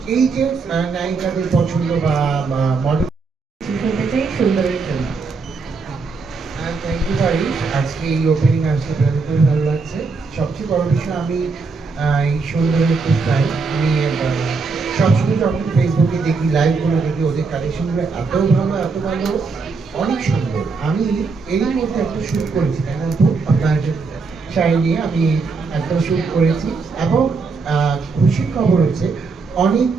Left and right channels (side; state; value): left; quieter; 4.3 dB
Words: এই যে নায়িকাদের পছন্দ বা মডেল শুনতে চাই সুন্দরের জন্য। থ্যাংক ইউ ভাই। আজকে এই ওপেনিং আসতে পেরে খুবই ভালো লাগছে। সবচেয়ে বড় বিষয় আমি এই সুন্দরের খুব ফ্যান। আমি সবসময় যখন ফেসবুকে দেখি, লাইভগুলো দেখি, ওদের কালেকশনগুলো এত ভালো, এত ভালো, অনেক সুন্দর। আমি এরই মধ্যে একটা শুট করেছি, তাই না আপু? আপনার শাড়ি নিয়ে আমি একটা শুট করেছি এবং খুশির খবর হচ্ছে অনেক